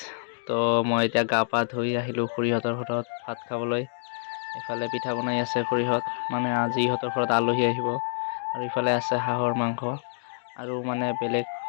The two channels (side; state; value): right; silent; 60 dB below the other